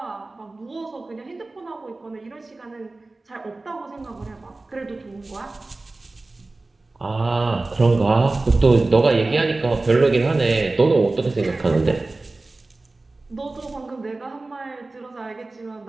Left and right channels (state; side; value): quieter; left; 3.2 dB